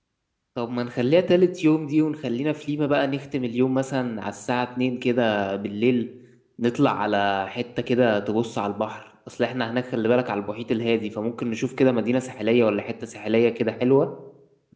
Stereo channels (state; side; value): identical; both; correlation 1.00